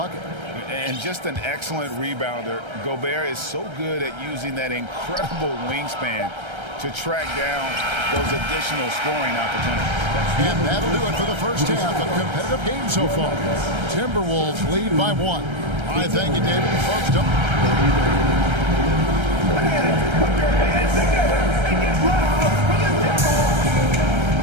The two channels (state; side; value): late; left; 1.3 ms